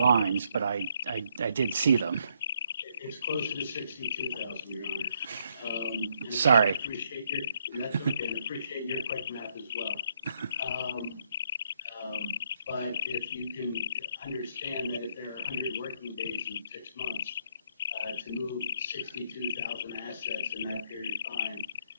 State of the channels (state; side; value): inverted; both; correlation -0.74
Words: but I did see them. It's closer to 62,000, Your Honor. Sorry. That's okay, and appreciate your quick math as well. But if you can understand that if there are 100 working days in 6 months, to move 62,000 assets in that period of time